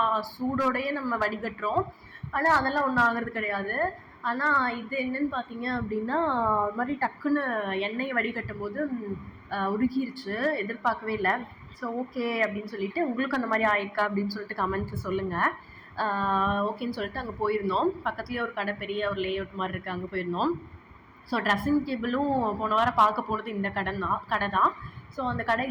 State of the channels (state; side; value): identical; both; correlation 1.00